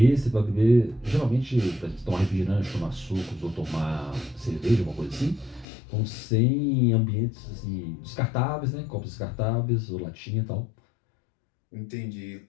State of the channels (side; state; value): right; drops out; at 5.7 s